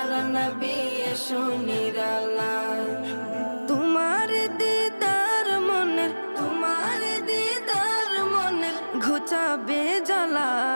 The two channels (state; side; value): inverted; both; correlation -1.00